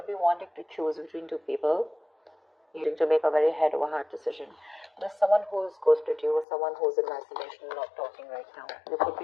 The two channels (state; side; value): drops out; right; at 6.5 s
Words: be wanting to choose between two people, needing to make a very head over heart decision. There's someone who's ghosted you, or someone who's in isolation, not talking right now. You could